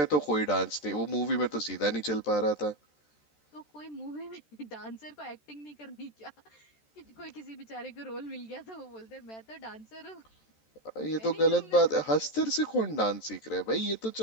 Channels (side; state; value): right; late; 13 ms